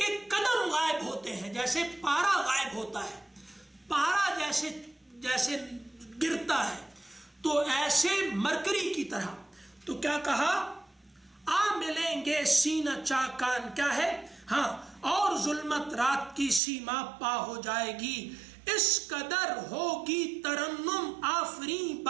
قدم غائب ہوتے ہیں، جیسے پارا غائب ہوتا ہے، پارا جیسے گرتا ہے، تو ایسے مرکری کی طرح۔ تو کیا کہا، آ ملیں گے سینہ چاکان، کیا ہے، ہاں، اور ظلمت رات کی سیما پا ہو جائے گی، اس قدر ہوگی ترنم آفریں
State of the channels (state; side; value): drops out; left; at 16.6 s